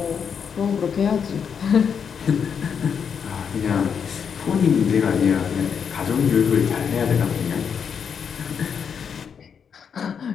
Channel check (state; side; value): quieter; right; 7.0 dB